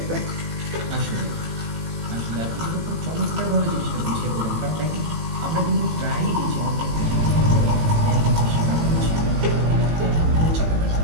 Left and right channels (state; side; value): late; left; 18 ms